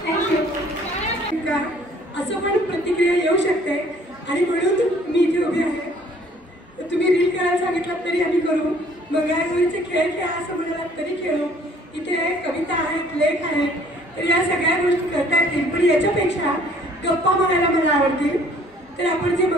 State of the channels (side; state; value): both; normal; correlation 0.57